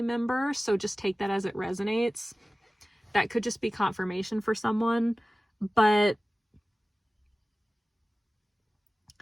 member. So just take that as it resonates. That could just be confirmation for someone. But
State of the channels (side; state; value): both; normal; correlation 0.97